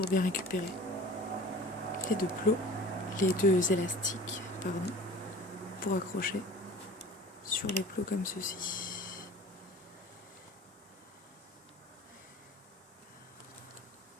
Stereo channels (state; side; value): normal; both; correlation 0.43